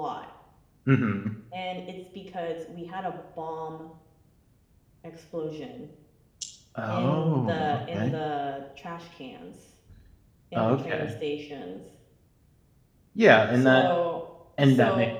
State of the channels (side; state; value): both; identical; correlation 1.00